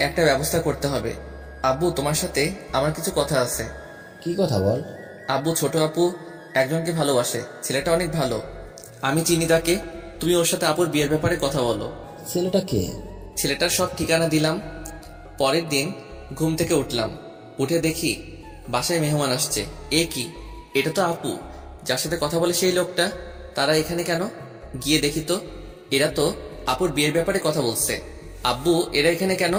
একটা ব্যবস্থা করতে হবে। আব্বু, তোমার সাথে আমার কিছু কথা আছে। কি কথা বল? আব্বু, ছোট আপু একজনকে ভালোবাসে, ছেলেটা অনেক ভালো। আমি চিনি তাকে। তুমি ওর সাথে আপুর বিয়ের ব্যাপারে কথা বলো। ছেলেটা কে? ছেলেটার সব ঠিকানা দিলাম। পরের দিন ঘুম থেকে উঠলাম, উঠে দেখি বাসায় মেহমান আসছে। এ কি, এটা তো আপু যার সাথে কথা বলে সেই লোকটা। তারা এখানে কেন? গিয়ে দেখি তো, এরা তো আপুর বিয়ের ব্যাপারে কথা বলছে। আব্বু, এরা এখানে কেন?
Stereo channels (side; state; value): both; identical; correlation 1.00